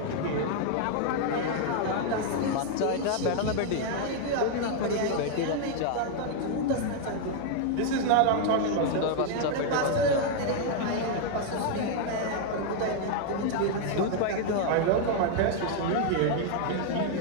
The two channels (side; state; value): both; different; correlation 0.00